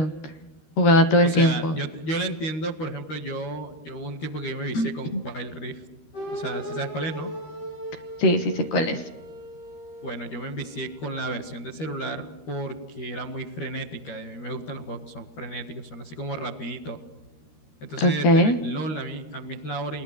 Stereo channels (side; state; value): right; late; 13 ms